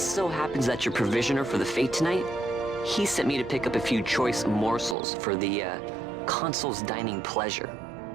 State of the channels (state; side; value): drops out; left; at 5.0 s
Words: so happens that your provisioner for the fete tonight, he sent me to pick up a few choice morsels for the, Consul's dining pleasure.